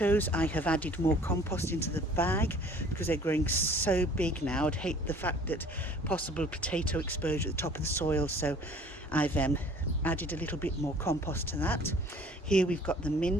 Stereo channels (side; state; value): both; normal; correlation 0.51